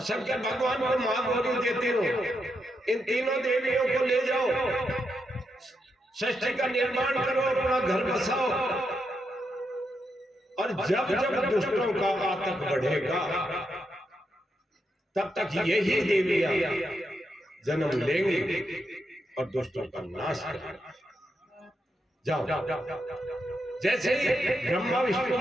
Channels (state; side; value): normal; both; correlation 0.83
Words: शंकर भगवान को मां गौरी देते हो। इन तीनों देवियों को ले जाओ, सृष्टि का निर्माण करो, अपना घर बसाओ। और जब जब दुष्टों का आतंक बढ़ेगा, तब तक यही देवियां जन्म लेंगी और दुष्टों का नाश करेंगे। जाओ। जैसे ही ब्रह्मा विष्णु